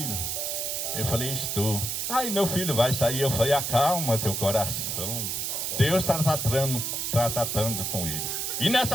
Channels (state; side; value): noise; right; hiss, 1 dB below the sound